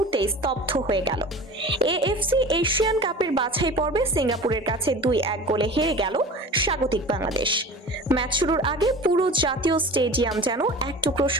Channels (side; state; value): both; normal; correlation 0.37